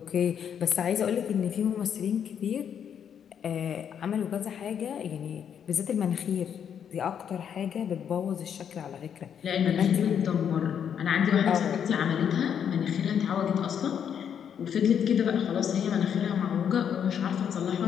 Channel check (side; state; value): right; quieter; 8.3 dB